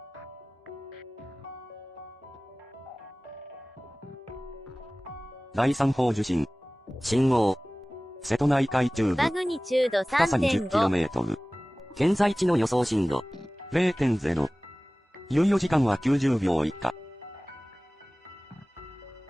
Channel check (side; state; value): both; normal; correlation 0.98